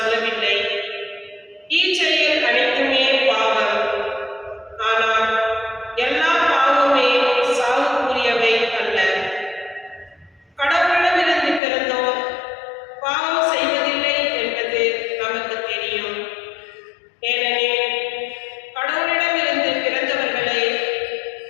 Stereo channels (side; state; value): right; drops out; at 11.6 s